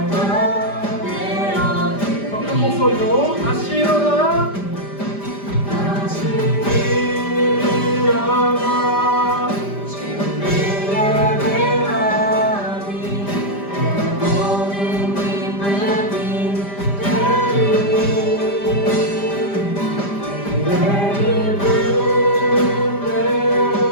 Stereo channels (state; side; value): late; right; 5.0 ms